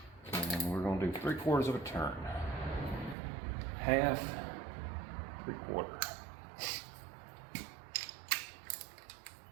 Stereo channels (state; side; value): drops out; left; at 3.2 s